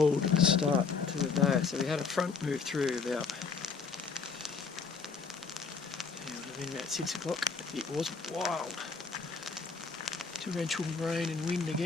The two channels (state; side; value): quieter; right; 5.0 dB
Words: start to the day. So we had a front move through about 6 o'clock. It was wild, torrential rain and wind